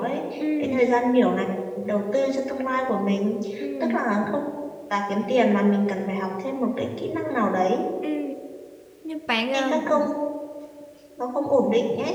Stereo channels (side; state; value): both; identical; correlation 1.00